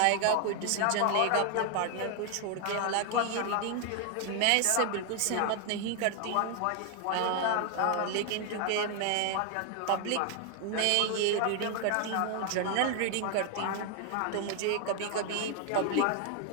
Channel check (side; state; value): both; different; correlation 0.00